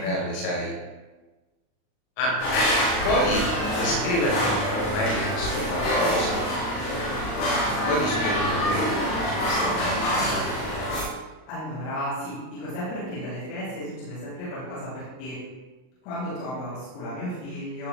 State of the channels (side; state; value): right; late; 39 ms